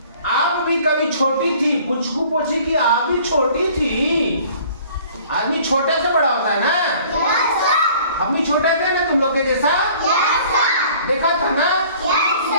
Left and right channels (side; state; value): both; inverted; correlation -0.52